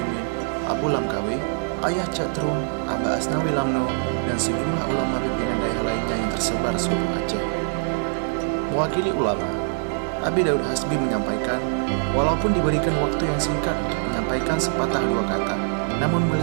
Abu Lamkawi, Ayah Catrung, Aba Asnawi Lamno, dan sejumlah ulama pimpinan daerah lainnya yang tersebar seluruh Aceh. Mewakili ulama, Abi Daud Hasbi menyampaikan, walaupun diberikan waktu yang singkat untuk menyampaikan sepatah dua kata, namun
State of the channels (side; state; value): left; silent; 63 dB below the other